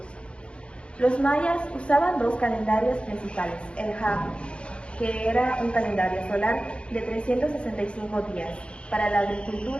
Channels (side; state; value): right; late; 0.058 ms